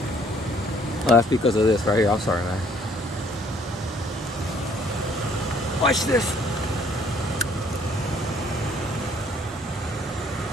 that's because of this right here. I'm sorry, man. Watch this.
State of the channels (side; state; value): both; normal; correlation 0.61